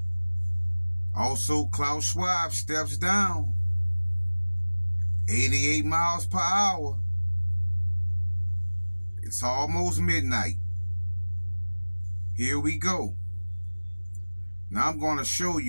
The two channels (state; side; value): inverted; both; correlation -1.00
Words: Also, Klaus Schwab steps down. 88 miles per hour. It's almost midnight. Here we go. Now I'm going to show